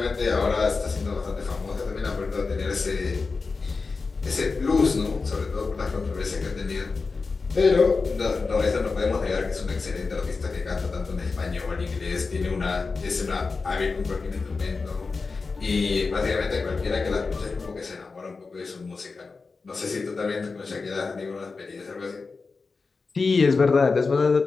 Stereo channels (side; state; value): right; quieter; 4.3 dB